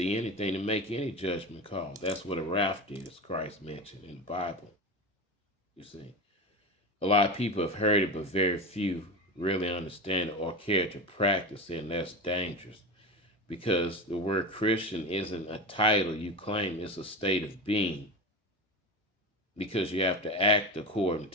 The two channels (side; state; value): both; normal; correlation 0.24